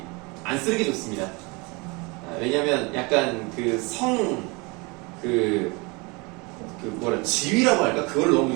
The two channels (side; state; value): left; quieter; 27.7 dB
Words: 안 쓰는 게 좋습니다. 왜냐면 약간 지위라고 할까? 그걸 너무